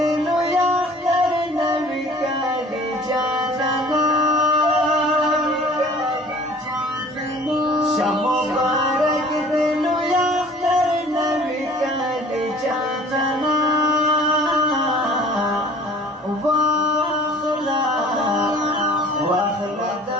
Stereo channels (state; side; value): normal; both; correlation 0.49